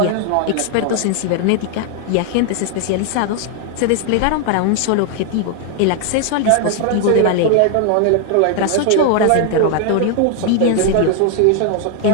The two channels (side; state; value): both; different; correlation 0.00